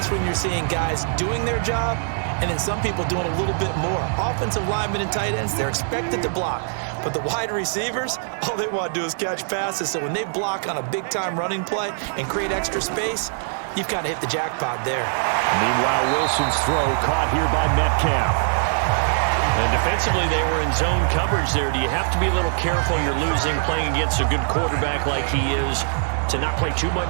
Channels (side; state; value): left; silent; 64 dB below the other